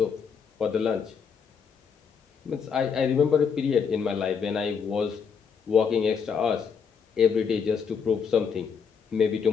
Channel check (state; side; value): quieter; right; 6.4 dB